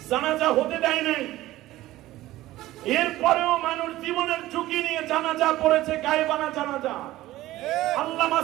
জানাজা হতে দেয় নাই, এরপরেও মানুষ জীবনের ঝুঁকি নিয়ে জানাজা পড়েছে, গায়েবানা জানাজা। আল্লামা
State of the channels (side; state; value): left; quieter; 16.2 dB